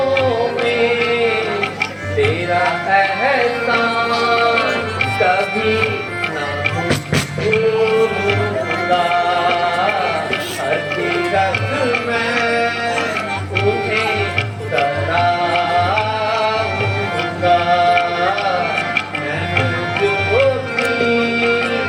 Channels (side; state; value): both; identical; correlation 1.00